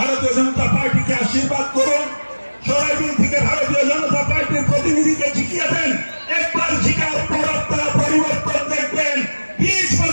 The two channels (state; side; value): inverted; both; correlation -1.00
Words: জনতা পার্টিকে আশীর্বাদ করুন। সরাইবিল থেকে ভারতীয় জনতা পার্টির প্রতিনিধিকে জিতিয়ে দেন। একবার জিতার পর আপনারা পরিবর্তন দেখবেন। 20